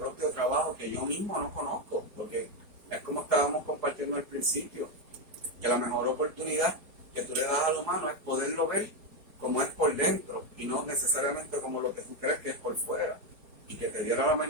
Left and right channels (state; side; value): late; left; 4.8 ms